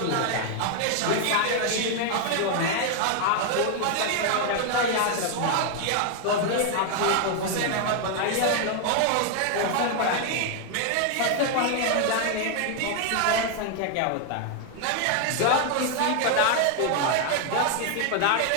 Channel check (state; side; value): different; both; correlation 0.00